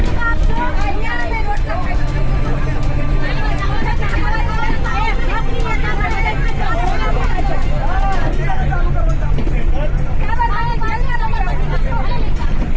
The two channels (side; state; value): both; identical; correlation 1.00